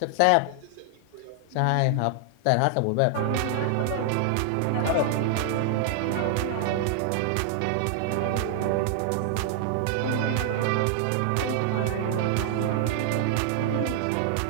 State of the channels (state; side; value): different; both; correlation 0.00